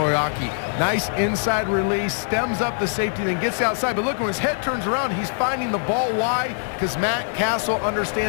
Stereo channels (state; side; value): silent; right; digital silence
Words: Nice inside release, stems up the safety, then gets outside. But look, when his head turns around, he's finding the ball. Why? Because Matt Castle